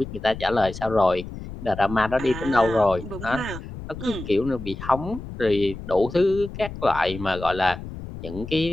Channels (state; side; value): noise; left; rumble, 11 dB below the sound